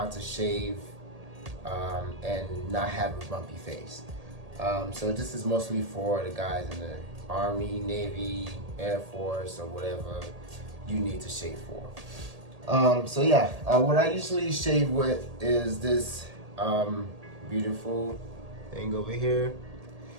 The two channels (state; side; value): late; left; 1.8 ms